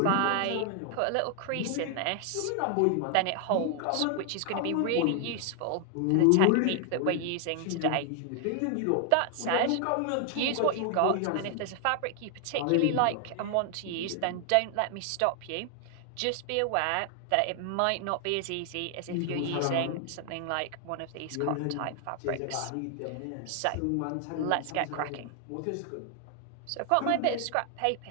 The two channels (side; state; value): both; different; correlation 0.00